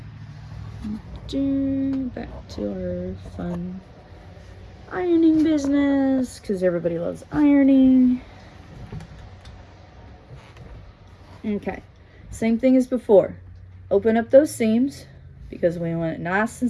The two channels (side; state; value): both; identical; correlation 1.00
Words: Back to our fun ironing business, because everybody loves ironing. Okay, same thing as before. Open up those seams because we want it nice